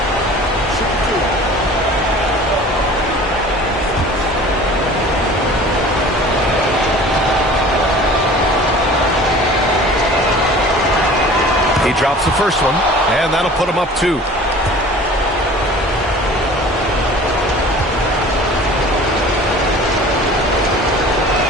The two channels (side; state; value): both; normal; correlation 0.44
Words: He drops the first one, and that'll put him up 2.